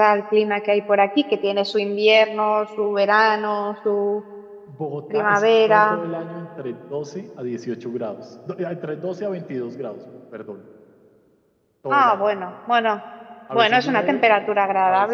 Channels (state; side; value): identical; both; correlation 1.00